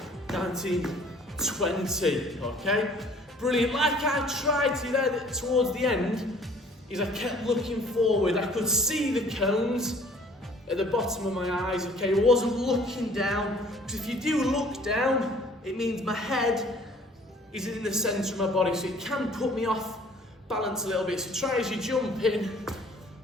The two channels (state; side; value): normal; both; correlation 0.54